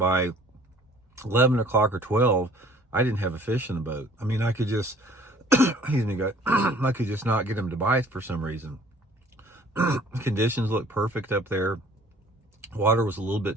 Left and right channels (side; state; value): both; normal; correlation 0.54